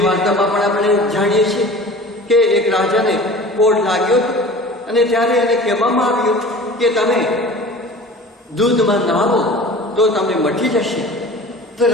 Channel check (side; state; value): both; normal; correlation 0.41